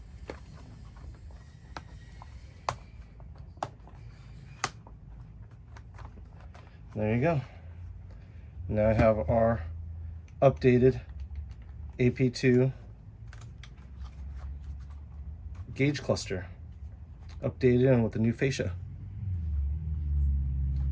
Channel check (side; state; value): both; identical; correlation 1.00